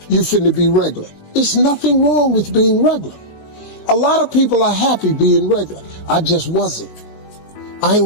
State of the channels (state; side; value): late; right; 19 ms